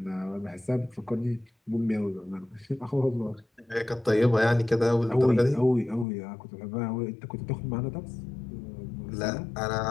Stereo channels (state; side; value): drops out; right; at 6.1 s